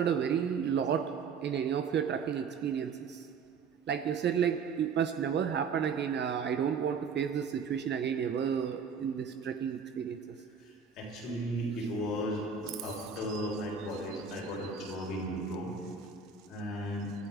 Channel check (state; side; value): quieter; left; 5.8 dB